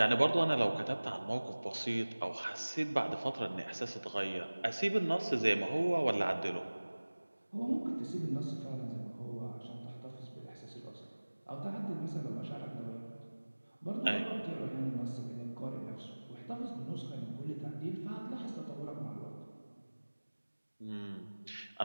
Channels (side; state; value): both; inverted; correlation -1.00